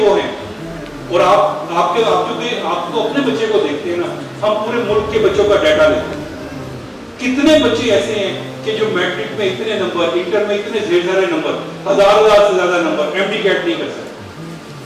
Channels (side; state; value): both; identical; correlation 1.00